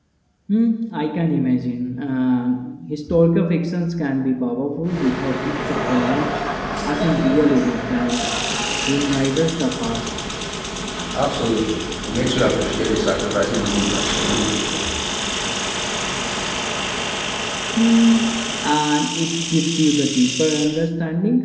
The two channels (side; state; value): both; identical; correlation 1.00